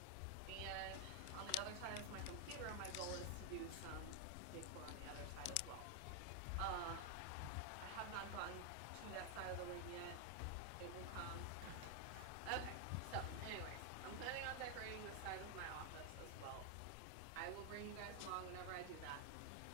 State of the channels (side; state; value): both; different; correlation 0.01